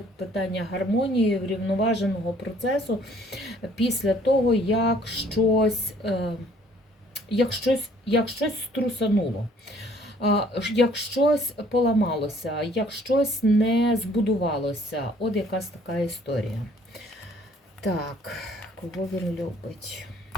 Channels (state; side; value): normal; both; correlation 0.59